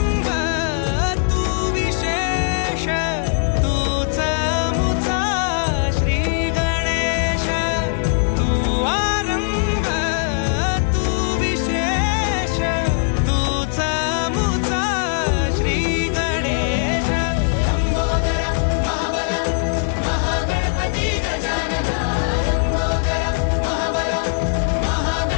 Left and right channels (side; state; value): right; silent; digital silence